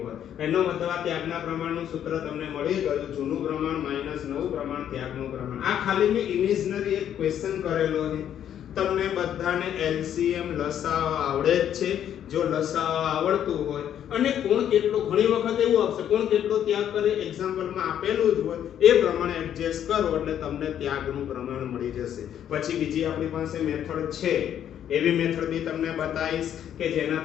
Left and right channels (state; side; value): quieter; right; 10.0 dB